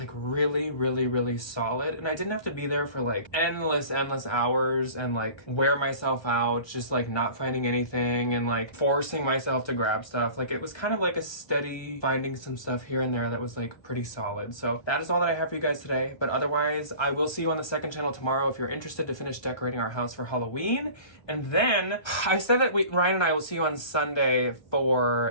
really, really, really solid, and I didn't have to be there for like endless hours and like wear myself out just like not finding anything and like forcing myself to grab stuff. Like it was kind of like a steady finding some stuff here and there that was like pretty solid. So that is all that I have for you guys today, but otherwise I will see you on the second channel tomorrow if you're interested to finish decorating our house for Halloween. And then I said that Ryan and I will see you on Sunday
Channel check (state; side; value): late; right; 1.3 ms